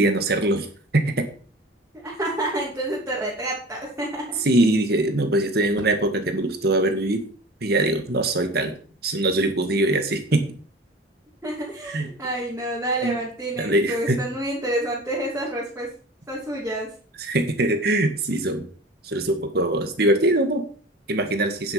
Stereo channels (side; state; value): both; normal; correlation 0.39